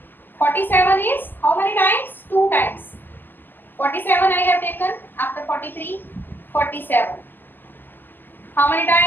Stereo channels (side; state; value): right; late; 0.090 ms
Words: 47 is how many times? 2 times. 47 I have taken. After 43, 47. How many